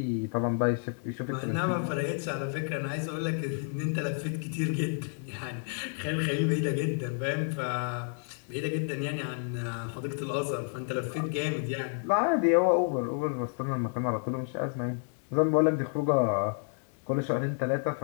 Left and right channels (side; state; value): right; silent; 58 dB below the other